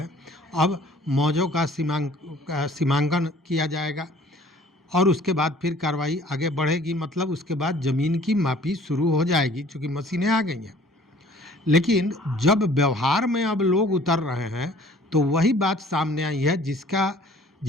अब मौजों का सीमांकन किया जाएगा और उसके बाद फिर कार्रवाई आगे बढ़ेगी। मतलब उसके बाद ज़मीन की मापी शुरू हो जाएगी, चूँकि मशीनें आ गई हैं। लेकिन जब व्यवहार में अब लोग उतर रहे हैं तो वही बात सामने आई है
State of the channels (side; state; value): both; normal; correlation 0.53